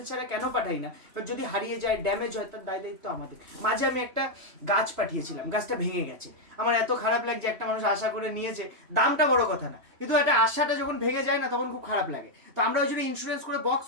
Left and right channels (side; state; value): left; late; 3.1 ms